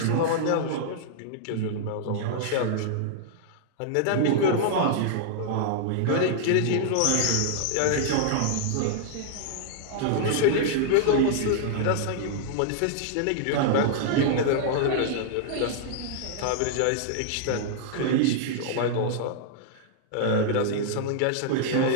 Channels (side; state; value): both; different; correlation -0.01